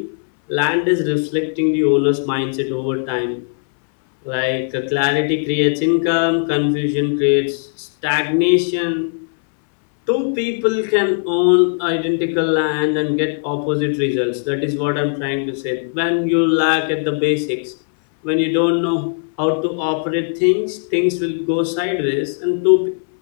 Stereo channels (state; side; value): silent; right; 67 dB below the other